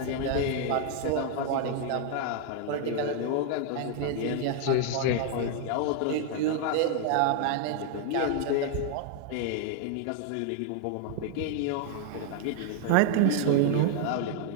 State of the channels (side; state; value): both; different; correlation 0.00